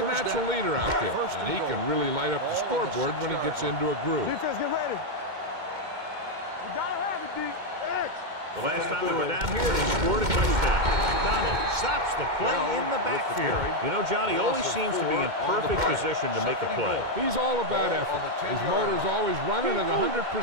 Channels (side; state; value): left; late; 2.2 ms